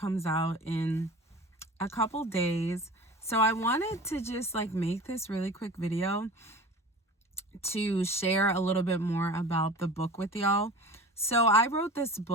out in a couple days. So I wanted to just make this really quick video to share a little bit more about the book with y'all. So I wrote this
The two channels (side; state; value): both; normal; correlation 0.38